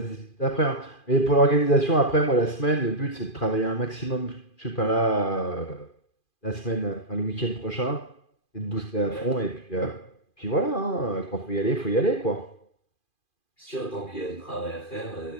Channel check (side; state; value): right; late; 2.4 ms